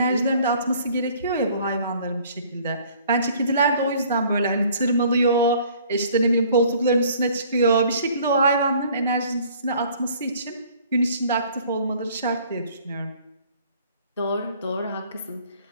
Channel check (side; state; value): both; inverted; correlation -0.55